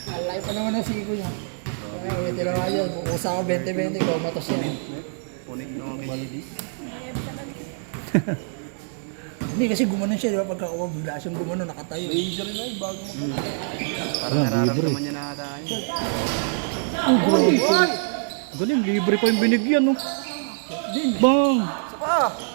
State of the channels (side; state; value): left; silent; digital silence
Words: Alay pa naman ang siko niya. Kaya may tinamaan yan. Kukusa ko 20-20, ikaw matos yan. punik ng malidis. Hindi kasi gumanon siya, di ba? Pagkakuha, bigla siyang gumanon, nakatayo. Injury na bago mo. Ah, Parang libre. nararamdaman niya na tayo. Oh, grabe. Galing, libre pa yung binigyan, no? Din. Bang! Saka.